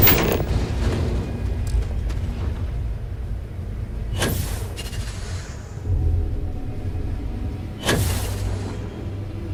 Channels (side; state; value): both; identical; correlation 1.00